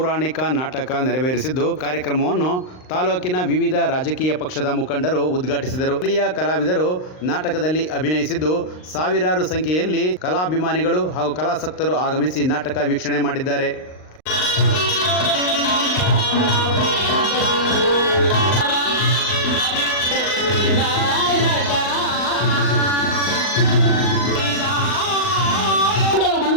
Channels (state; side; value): late; right; 39 ms